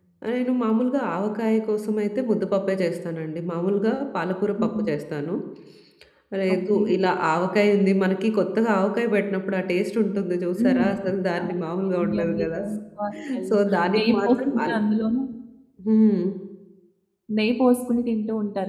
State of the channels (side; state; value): both; identical; correlation 1.00